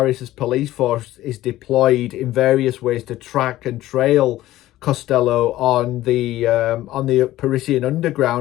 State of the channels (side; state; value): right; quieter; 15.2 dB